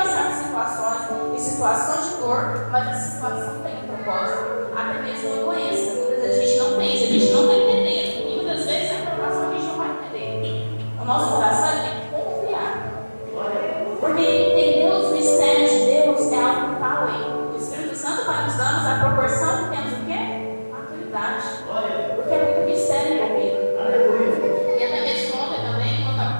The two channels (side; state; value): both; inverted; correlation -1.00